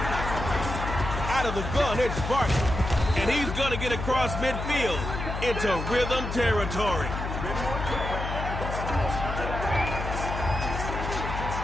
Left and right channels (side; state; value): left; noise; hum, 5 dB below the sound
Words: Out of the gun, it's Barkley. And he's going to get across midfield into rhythm territory.